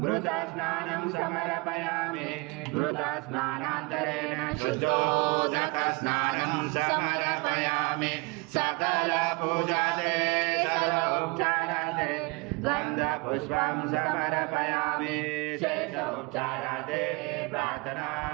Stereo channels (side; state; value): left; quieter; 27.6 dB